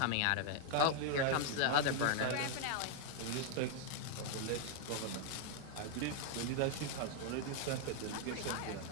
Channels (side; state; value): both; different; correlation 0.00